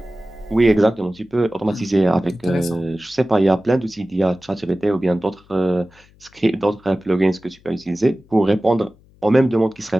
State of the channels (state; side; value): noise; left; hum, 29 dB below the sound